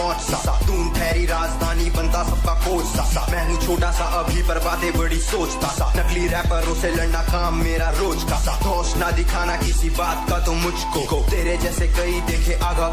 सा दून ठहरी राजधानी बनता सबका कोच सा मैं हूँ छोटा सा अभी पर बातें बड़ी सोचता सा नकली रैपरों से लड़ना काम मेरा रोज का सा होश ना दिखाना किसी बात का तो मुझको तेरे जैसे कई देखे आगा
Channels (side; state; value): both; identical; correlation 1.00